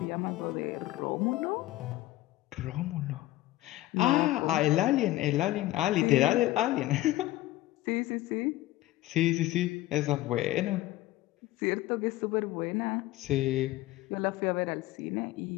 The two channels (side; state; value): right; quieter; 16.6 dB